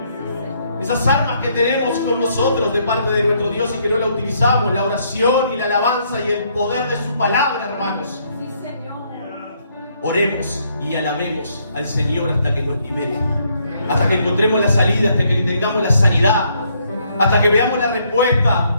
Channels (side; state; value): both; inverted; correlation -0.71